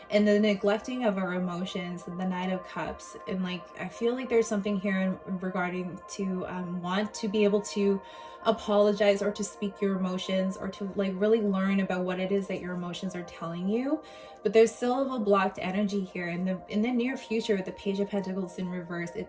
and the neglecting of our emotions, and the Knight of Cups. And like I feel like there's something here regarding to want to be able to apologize or to speak your emotions, or to like really learn about what it is that your emotions are telling you. But there's still a blocked energy here in the near future with the Page of Pentacles in reverse.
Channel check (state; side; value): identical; both; correlation 1.00